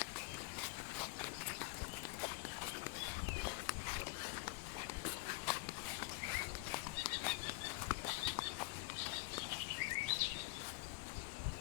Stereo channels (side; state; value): right; quieter; 25.6 dB